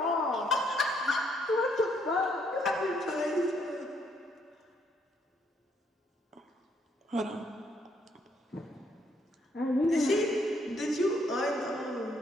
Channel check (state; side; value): normal; both; correlation 0.70